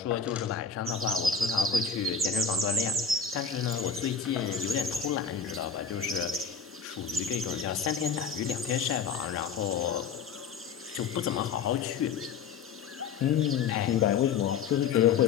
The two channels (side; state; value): right; quieter; 6.2 dB